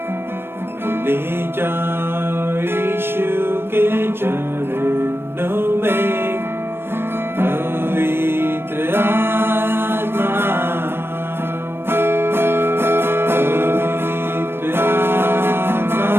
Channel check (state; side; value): late; left; 0.11 ms